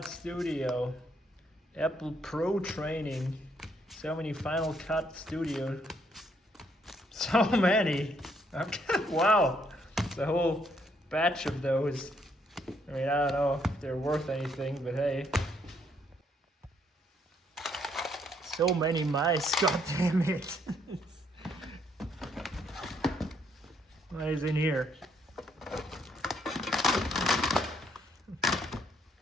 Studio. Apple Pro training. So many Final Cut Studio. So many. Wow. The whole batch of those. I mean, I don't know if they're worth anything, but hey. So many mice, god damn it. What is in here?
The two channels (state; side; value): normal; both; correlation 0.71